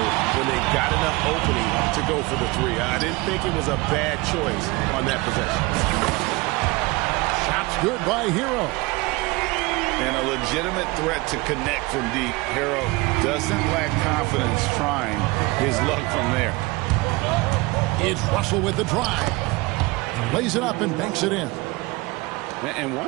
when they got enough opening to go for the three. I didn't think it was a bad choice on that possession. Shot's good by Hero. And a legitimate threat to connect from deep. Hero doesn't lack confidence trying his luck from there. It's Russell with the drive. Lays it up and banks it in. And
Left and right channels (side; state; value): left; quieter; 23.1 dB